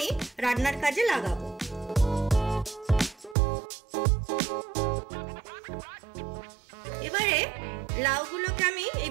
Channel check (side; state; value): left; drops out; at 3.4 s